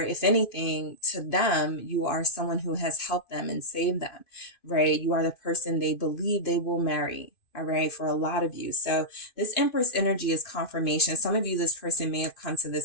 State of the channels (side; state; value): right; late; 2.5 ms